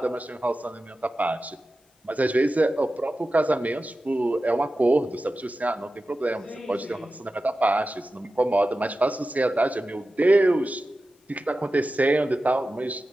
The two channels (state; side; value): normal; both; correlation 0.94